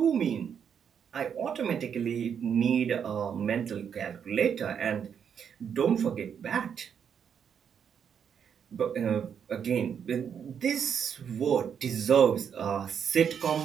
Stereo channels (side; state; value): left; quieter; 7.7 dB